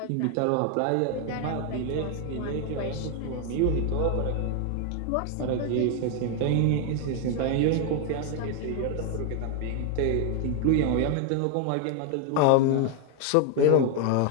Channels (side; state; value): both; different; correlation 0.00